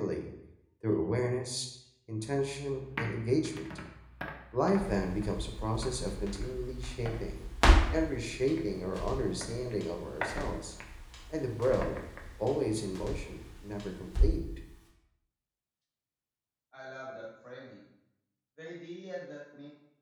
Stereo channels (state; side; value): identical; both; correlation 1.00